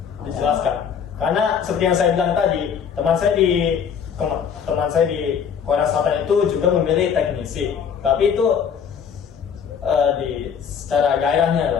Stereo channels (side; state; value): right; quieter; 7.2 dB